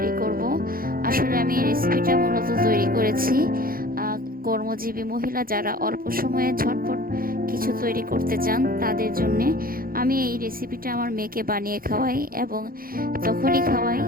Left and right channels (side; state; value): left; late; 0.42 ms